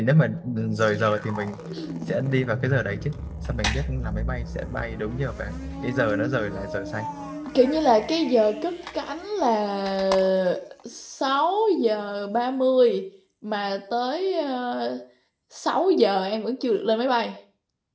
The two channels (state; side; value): identical; both; correlation 1.00